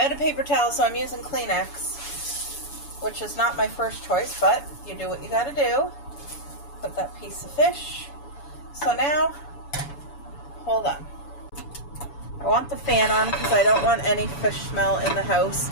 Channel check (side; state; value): right; late; 7.0 ms